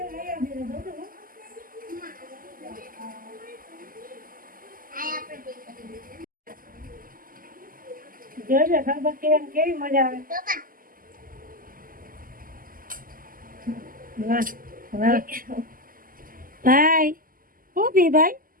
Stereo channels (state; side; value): late; left; 0.41 ms